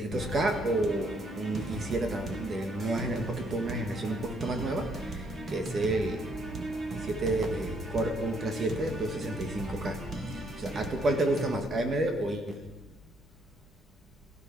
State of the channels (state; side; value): normal; both; correlation 0.69